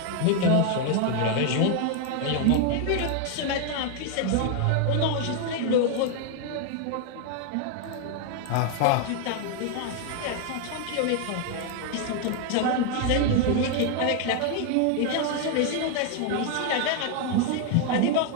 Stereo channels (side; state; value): both; different; correlation 0.00